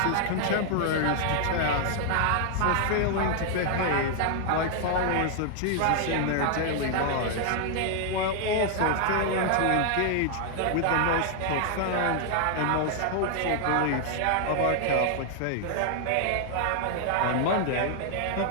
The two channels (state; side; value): different; both; correlation 0.00